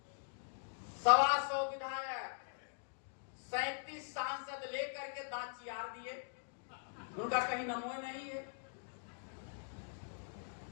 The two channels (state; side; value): silent; right; digital silence